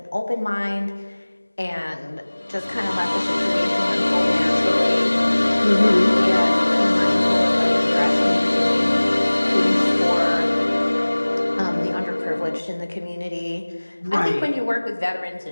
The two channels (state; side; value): inverted; both; correlation -1.00